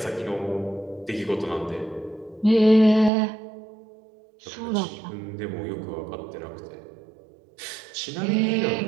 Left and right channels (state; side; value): drops out; left; at 3.1 s